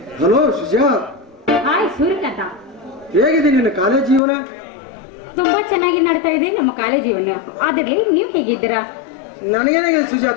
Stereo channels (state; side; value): drops out; right; at 4.2 s